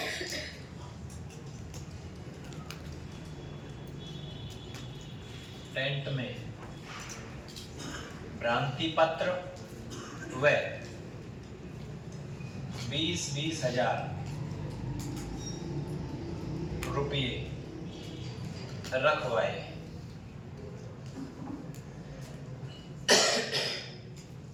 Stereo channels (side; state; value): both; identical; correlation 1.00